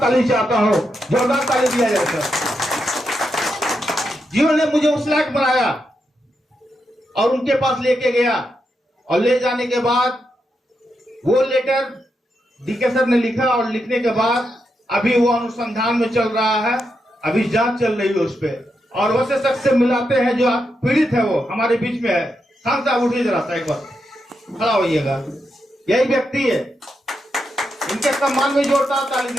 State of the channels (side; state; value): both; normal; correlation 0.84